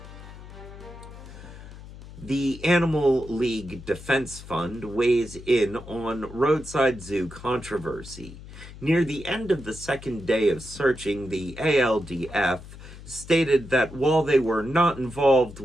The Animal League Defense Fund weighs in on roadside zoo controversy. Near the end of the second day of searching, the ALDF stated that while they were not involved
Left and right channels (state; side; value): noise; left; hum, 16 dB below the sound